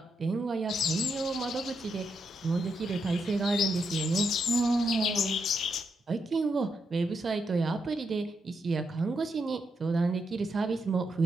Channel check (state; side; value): normal; both; correlation 0.81